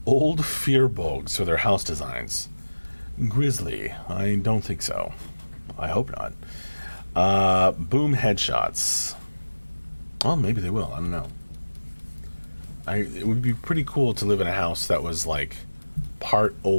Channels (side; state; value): both; inverted; correlation -1.00